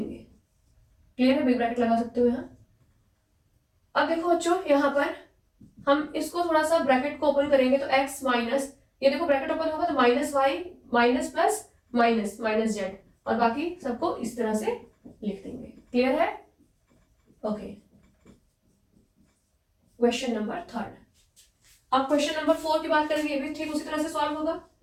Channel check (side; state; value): both; identical; correlation 1.00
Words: क्लियर है, बिग ब्रैकेट लगा सकते हो यहाँ। अब देखो बच्चों यहाँ पर हम इसको थोड़ा सा ब्रैकेट को ओपन करेंगे तो x माइनस, ये देखो ब्रैकेट ओपन होगा तो minus Y minus plus minus minus Z और बाकी सबको इस तरह से लिख देंगे। क्लियर है, ओके। Question number 3। अब क्वेश्चन नंबर 4 की बात करेंगे, ये भी ठीक उसी तरह से सॉल्व होगा।